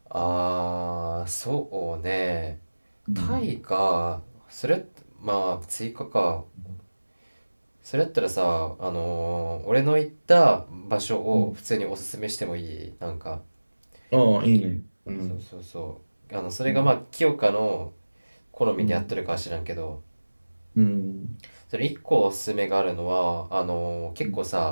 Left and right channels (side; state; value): both; inverted; correlation -1.00